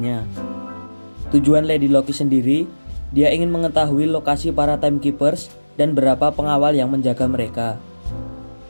Tujuan Lady Loki sendiri, dia ingin mengetahui lokasi para Timekeepers dan berapa pengawal yang menjaga mereka.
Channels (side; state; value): both; inverted; correlation -1.00